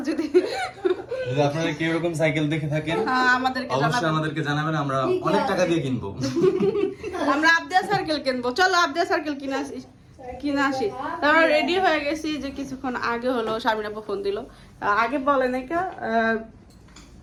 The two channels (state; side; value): identical; both; correlation 1.00